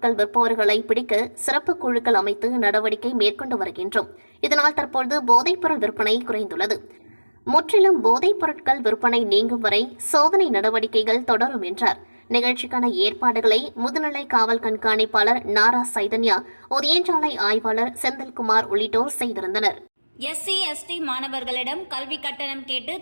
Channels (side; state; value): both; inverted; correlation -1.00